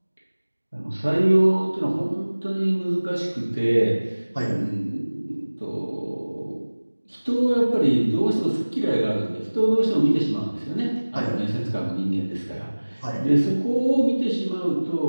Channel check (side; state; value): both; inverted; correlation -1.00